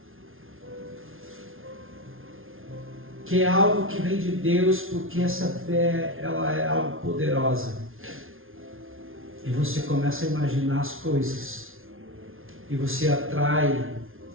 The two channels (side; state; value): left; late; 0.60 ms